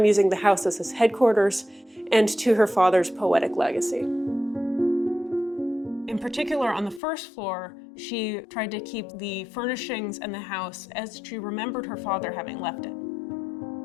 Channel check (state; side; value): drops out; right; at 7.0 s